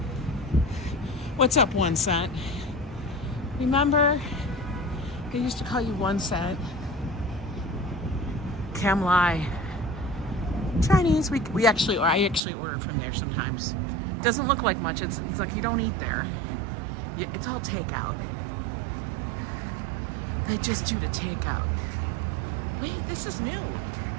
What's up, 1 cent? Remember? I used to call you 1 cent. Cam Lai. Chinese. I actually order from there sometimes. Doesn't look like much. It's like you don't eat there. It's all takeout. They just do the takeout. Wait, this is new.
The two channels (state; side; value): drops out; left; at 12.4 s